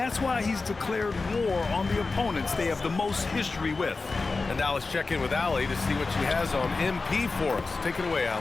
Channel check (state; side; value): quieter; right; 3.9 dB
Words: why he's declared war on the opponents they have the most history with. And now let's check in with Allie to see what she has on MP for us. Take it away,